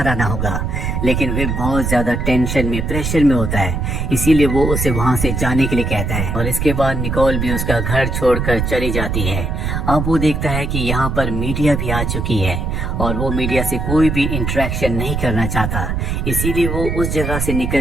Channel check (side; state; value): right; noise; rumble, 2 dB below the sound